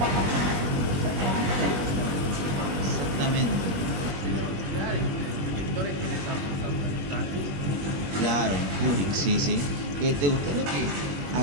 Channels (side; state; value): left; late; 21 ms